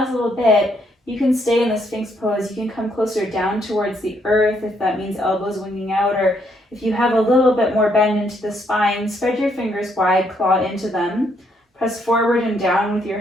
little bit, you can stay in the Sphynx Pose. You can come closer down towards the earth if that means elbows winging out, or if you have a little bit more bend into the spine, spread your fingers wide, claw into them. Press forward and down with your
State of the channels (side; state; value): both; normal; correlation 0.72